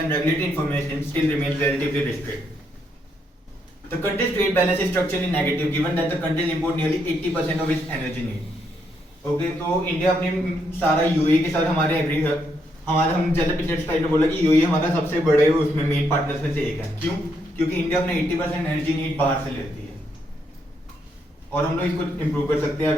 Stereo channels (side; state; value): both; normal; correlation 0.76